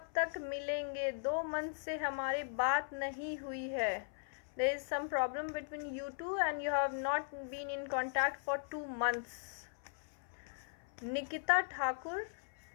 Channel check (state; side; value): silent; right; 52 dB below the other